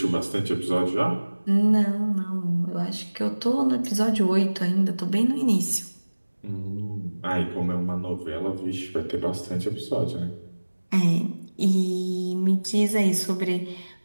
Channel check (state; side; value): inverted; both; correlation -1.00